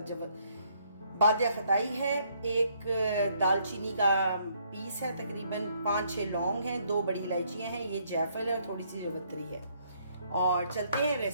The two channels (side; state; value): both; inverted; correlation -0.69